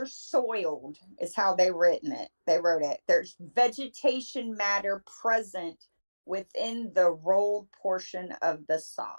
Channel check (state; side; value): inverted; both; correlation -1.00